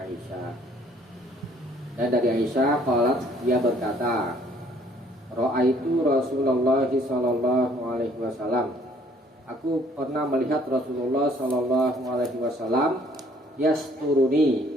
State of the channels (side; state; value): both; normal; correlation 0.61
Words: Dan dari Aisyah qalat, dia berkata, ra'aitu Rasulullah sallallahu alaihi wasallam. Aku pernah melihat Rasulullah sallallahu alaihi wasallam yasturuni,